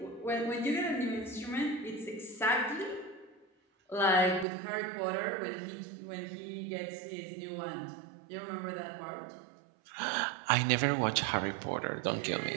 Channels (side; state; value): left; drops out; at 4.5 s